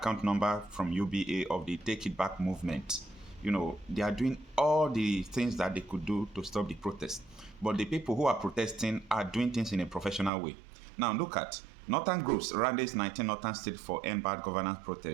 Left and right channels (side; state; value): left; drops out; at 10.3 s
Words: number from UBA of the Take It Back movement. They are doing all the things that they could do to stop the protest. But the people who are protesting are doing things in a professional way. Now look at Northern groups, Rallies 19 Northern State for End Bad Governance